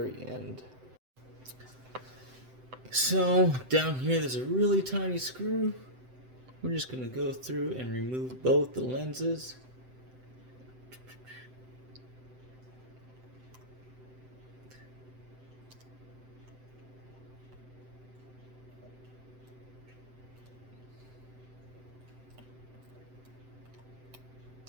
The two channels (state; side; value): late; left; 7.8 ms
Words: end. So down here there's a really tiny screw. We're just going to go through and remove both the lenses.